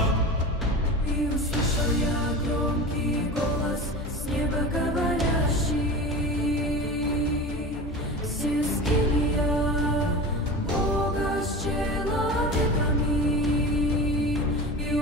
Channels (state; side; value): normal; both; correlation 0.31